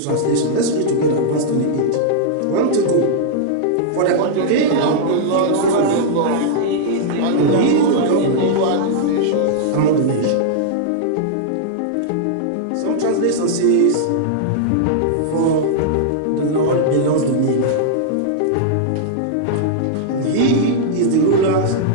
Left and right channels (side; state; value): both; different; correlation -0.02